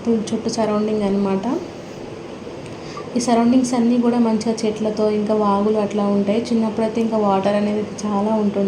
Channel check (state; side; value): identical; both; correlation 1.00